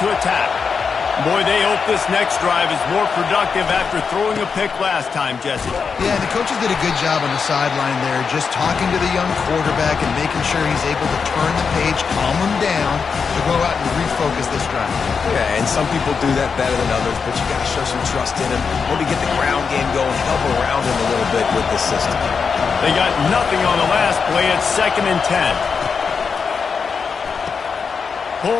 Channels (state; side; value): quieter; right; 5.7 dB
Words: attack. Boy, they hope this next drive is more productive after throwing a pick last time, Jesse. Yeah, the coaches did a good job on the sideline there, just talking to the young quarterback and making sure he's able to turn the page, calm him down, to go out and refocus this drive. Yeah, and some people do that better than others, but you got to show some trust in him. Maybe get the ground game going, help around him a little bit with the system. They got nothing on the last play. It's 2nd and 10.